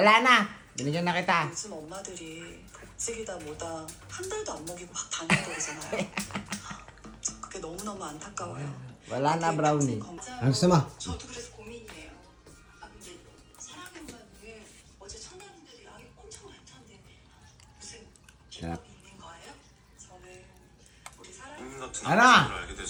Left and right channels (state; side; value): identical; both; correlation 1.00